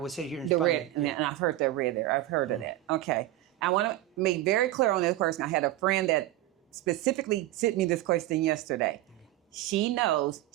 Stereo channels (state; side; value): quieter; left; 15.3 dB